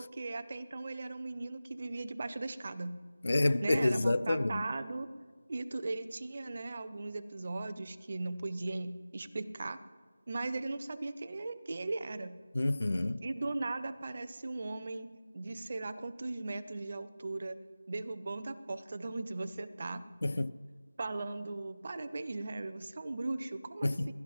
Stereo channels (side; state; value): both; inverted; correlation -0.96